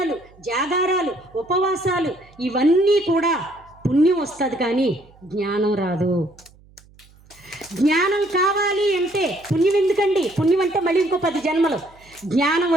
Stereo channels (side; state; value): right; noise; hum, 27 dB below the sound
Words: జాగారాలు, ఉపవాసాలు, ఇవన్నీ కూడా పుణ్యం వస్తుంది కానీ జ్ఞానం రాదు. జ్ఞానం కావాలి అంటే పుణ్యం ఎందుకండి? పుణ్యం అంటే మళ్ళీ ఇంకో 10 జన్మలు. జ్ఞానం